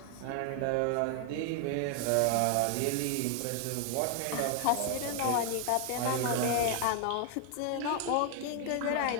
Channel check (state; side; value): different; both; correlation 0.00